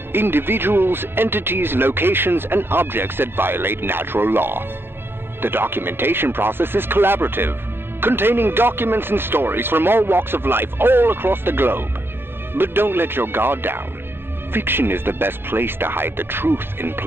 individuals, entities, locations, and objects that violate natural law. The documentation process is collaborative, containing documents and stories from all walks of life all across the globe. But don't let your guard down. Fiction is the best place to hide the truth in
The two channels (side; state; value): left; late; 0.11 ms